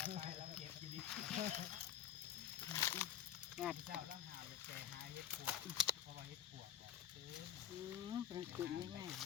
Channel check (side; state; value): right; quieter; 10.1 dB